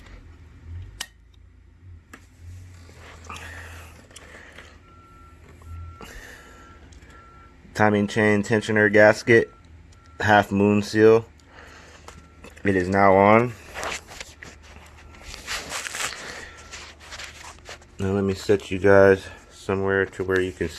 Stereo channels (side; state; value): both; identical; correlation 1.00